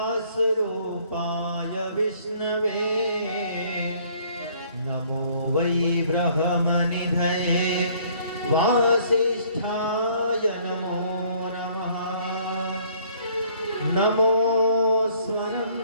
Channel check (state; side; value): inverted; both; correlation -0.59